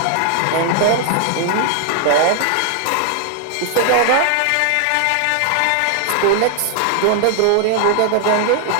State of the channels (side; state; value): both; different; correlation 0.00